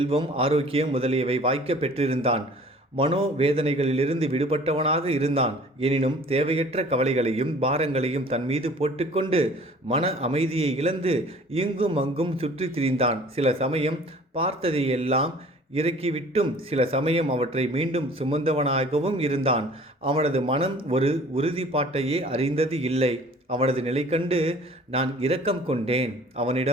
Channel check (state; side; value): normal; both; correlation 0.49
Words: ஆரோக்கியம் முதலியவை வாய்க்க பெற்றிருந்தான். மனோவேதனைகளிலிருந்து விடுபட்டவனாக இருந்தான். எனினும் தேவையற்ற கவலைகளையும் பாரங்களையும் தன் மீது போட்டுக்கொண்டு மன அமைதியை இழந்து இங்கும் அங்கும் சுற்றி திரிந்தான். சில சமயம் பார்த்ததையெல்லாம் இறக்கிவிட்டும் சில சமயம் அவற்றை மீண்டும் சுமந்தவனாகவும் இருந்தான். அவனது மனம் ஒரு உறுதிப்பாட்டையே அறிந்தது இல்லை. அவனது நிலை கண்டு நான் இரக்கம் கொண்டேன்.